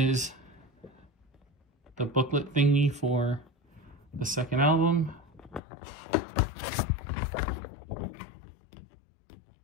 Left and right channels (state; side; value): drops out; right; at 5.6 s